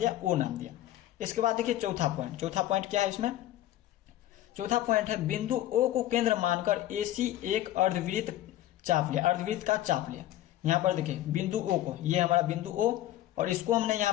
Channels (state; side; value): quieter; right; 13.9 dB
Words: O नाम दिया। इसके बाद देखिए चौथा पॉइंट क्या है इसमें, चौथा पॉइंट है बिंदु O को केंद्र मानकर AC एक अर्धवृत्त चाप लिया, अर्धवृत्त का चाप लिया। यहाँ पर देखिए बिंदु O को, ये हमारा बिंदु O और इसको हमने